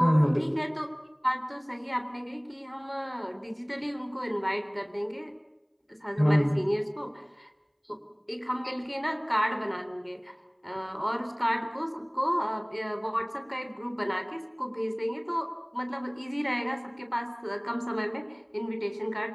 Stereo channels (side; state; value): both; identical; correlation 1.00